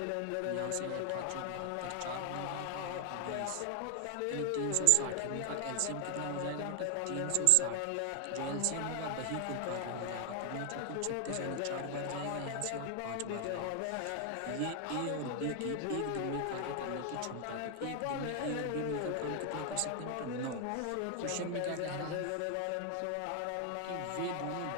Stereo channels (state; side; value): different; both; correlation 0.00